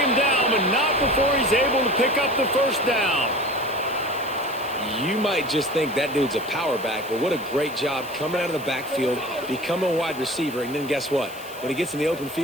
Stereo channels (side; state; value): left; noise; hiss, 18 dB below the sound